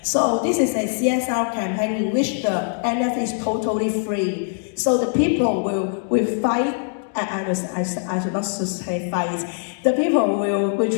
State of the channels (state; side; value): silent; right; digital silence